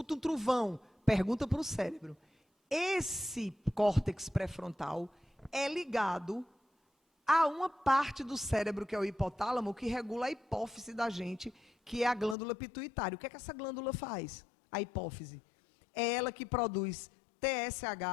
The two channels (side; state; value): right; drops out; at 12.4 s